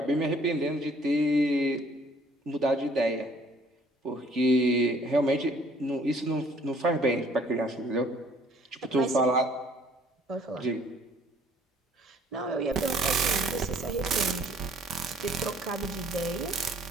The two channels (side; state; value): both; normal; correlation 0.58